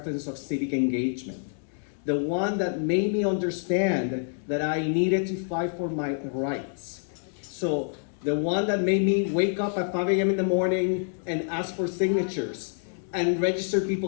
of civic engagement. The one that made me understand that I needed to fight for my rights. So, the one that made me wake up at 5 a.m. in the morning and ask for signatures and register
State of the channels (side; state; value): right; silent; digital silence